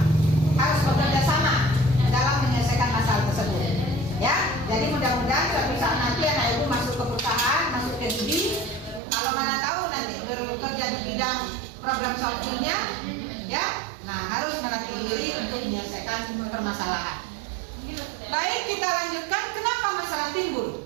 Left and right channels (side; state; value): left; drops out; at 9.0 s